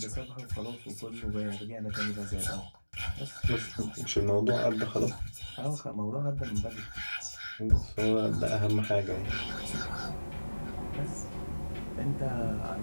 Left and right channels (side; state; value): both; inverted; correlation -1.00